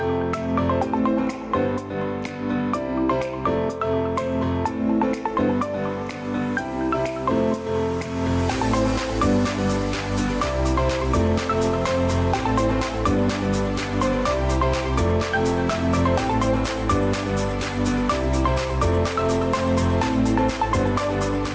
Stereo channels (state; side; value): identical; both; correlation 1.00